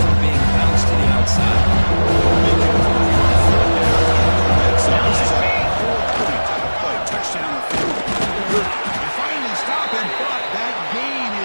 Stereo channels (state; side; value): inverted; both; correlation -1.00